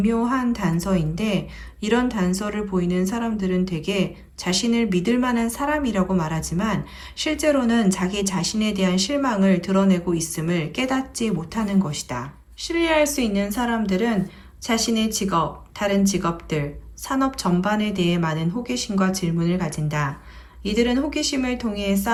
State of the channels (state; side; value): identical; both; correlation 1.00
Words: 단서인데 이런 단서를 보이는 사람들은 대개 자신을 믿을 만한 사람이라고 말하지만 실제로는 자기 자신에 대한 실망을 드러내고 있음을 깨닫지 못하는 것이다. 신뢰할 수 있는 사람들은 자신의 직업, 다른 직업들, 산업 전반에 대해 많은 호기심과 질문을 가진다. 이들은 호기심을 통해